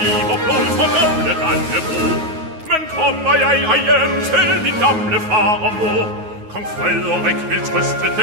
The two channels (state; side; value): late; left; 9.4 ms